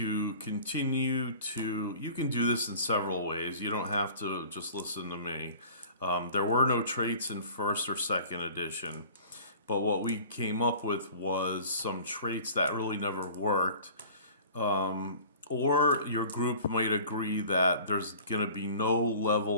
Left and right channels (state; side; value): inverted; both; correlation -0.44